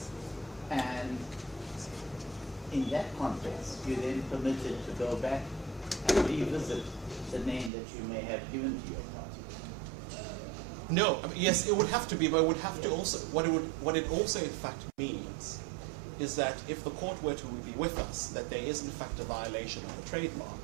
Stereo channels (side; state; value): left; drops out; at 7.7 s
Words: And in that context, you're then permitted to go back and revisit the name that you may have given to your party. No, I mean, yes, it would have to be, but it would have to also, what it also in fact means is that if the court were to be with us, that there is in fact a violation of the trademark,